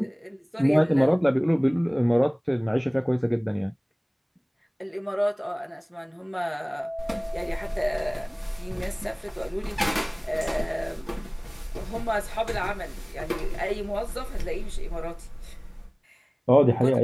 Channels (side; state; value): both; identical; correlation 1.00